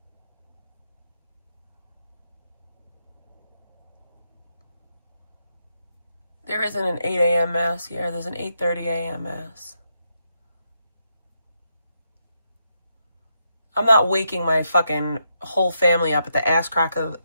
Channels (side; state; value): both; inverted; correlation -0.81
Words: There isn't an 8 a.m. mass here. There's an 8:30 a.m. mass. I'm not waking my fucking whole family up at the ass crack